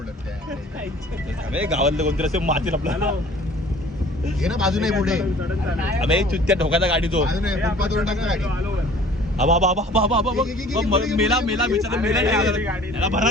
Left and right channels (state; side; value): normal; both; correlation 0.49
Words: गावातलं कोणतरी असे मातील आपल्याला घे ना बाजू नाही पुढे अबे चुत्त्या ठोकाचा गाडी तो मेला याला